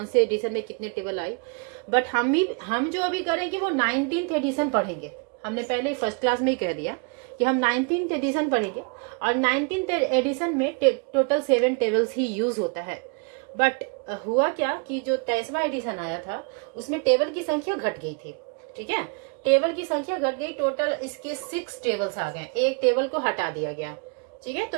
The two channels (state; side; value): quieter; left; 34.0 dB